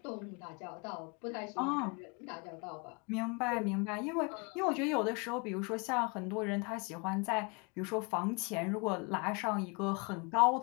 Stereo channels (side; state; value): right; quieter; 31.1 dB